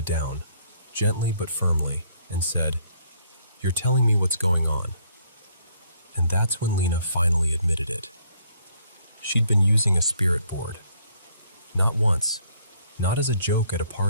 down, gently but firmly, and said, "You're telling me what's going on." And that's when Lena finally admitted it. She'd been using a spirit board. Not once, not as a joke at a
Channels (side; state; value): both; inverted; correlation -0.67